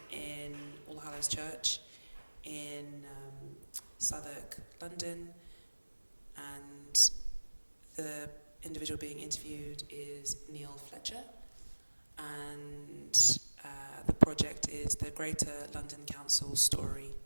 in All Hallows Church in Southwark, London, and the individual being interviewed is Neil Fletcher, and the project is the Greater London Council Story.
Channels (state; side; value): inverted; both; correlation -1.00